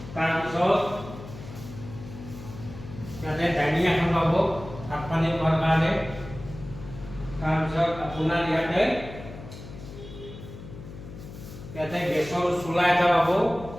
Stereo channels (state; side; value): noise; left; hum, 14 dB below the sound